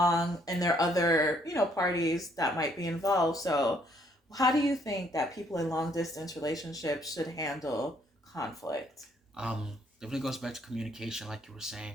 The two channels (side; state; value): both; normal; correlation 0.67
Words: and there are other parties that might be involved. So how do you think that people in long distance relationships should handle conflict? Definitely goes back to communication, like you were